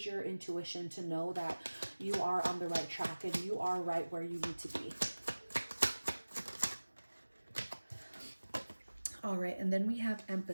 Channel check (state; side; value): inverted; both; correlation -1.00